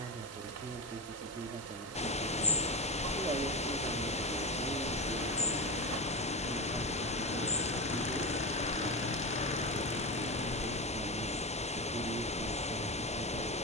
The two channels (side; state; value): both; normal; correlation 0.20